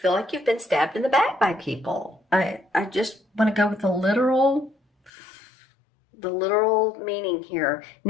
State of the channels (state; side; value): drops out; right; at 5.1 s